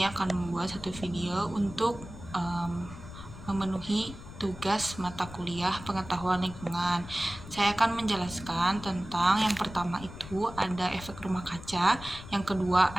akan membuat satu video untuk memenuhi tugas mata kuliah pengetahuan lingkungan. Saya akan menjelaskan tentang yang pertama itu ada efek rumah kaca, yang kedua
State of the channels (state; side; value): noise; left; rumble, 14 dB below the sound